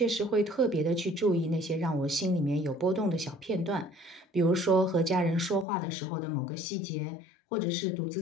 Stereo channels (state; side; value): drops out; right; at 5.7 s